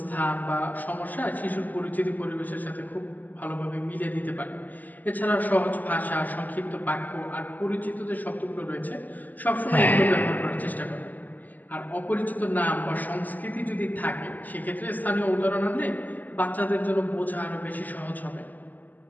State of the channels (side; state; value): right; late; 0.083 ms